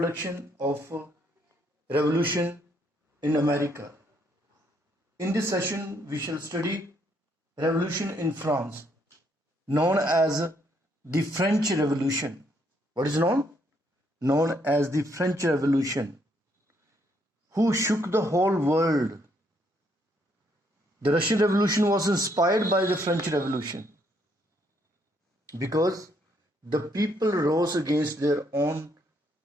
of revolution in America. In this session, we shall study revolution in France, known as the French Revolution. What is known? Known as the French Revolution, who shook the whole world. The Russian Revolution was inspired by the French Revolution because the people rose against their own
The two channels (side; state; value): both; normal; correlation 0.71